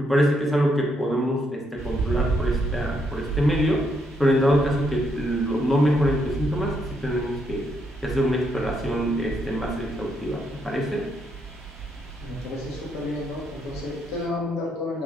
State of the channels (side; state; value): both; normal; correlation 0.76